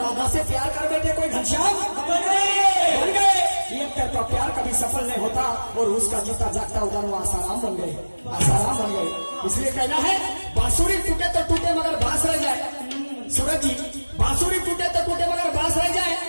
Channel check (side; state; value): both; inverted; correlation -1.00